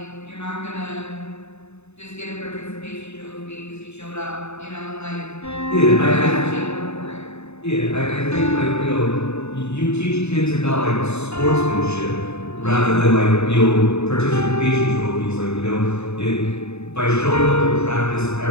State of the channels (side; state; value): right; late; 0.80 ms